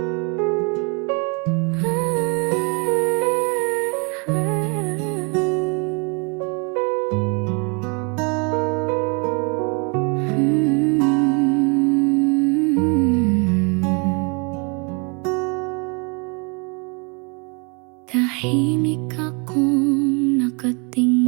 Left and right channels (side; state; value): left; quieter; 33.6 dB